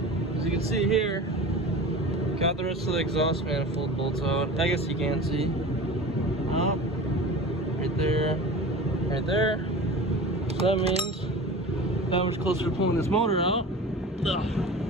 as you can see here, got the rest of the exhaust manifold bolts out. I guess you can't see. Oh, right there, right there. So that means that much closer to pulling this motor out. Ugh.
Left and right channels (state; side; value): normal; both; correlation 0.35